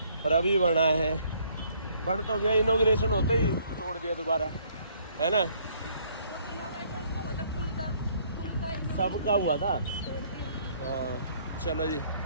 और अभी बना है, बन तो गया, इनॉग्रेशन होते ही तोड़ दिया दोबारा, है ना? सबका हुआ था। हाँ, चलो जी,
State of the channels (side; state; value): both; inverted; correlation -0.63